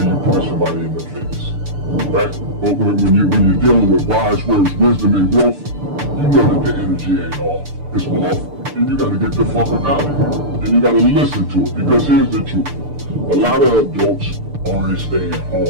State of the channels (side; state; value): left; late; 6.8 ms